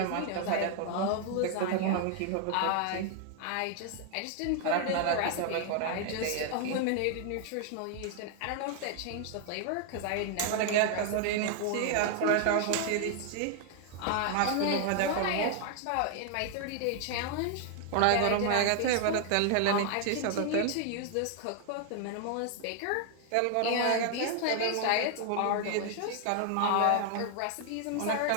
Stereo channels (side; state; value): both; different; correlation 0.00